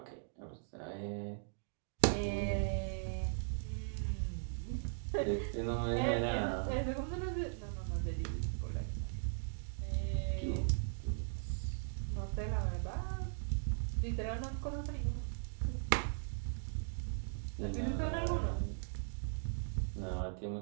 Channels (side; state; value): left; silent; digital silence